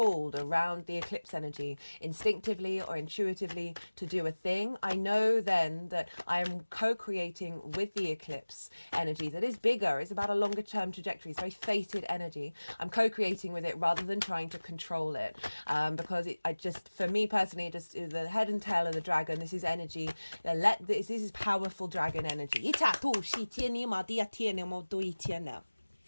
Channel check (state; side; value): inverted; both; correlation -1.00